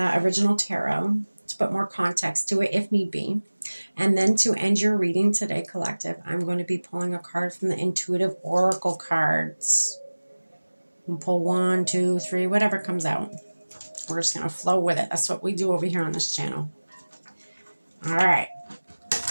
original tarot to put more context to it if need be. And then to end your reading today, collective, I'm going to be pulling a card from the Intuitive Oracle cards. We'll pull 1, 2, 3, whatever comes out. We're just going to flow with it. That's what we do over here on this channel. All right.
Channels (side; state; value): both; inverted; correlation -1.00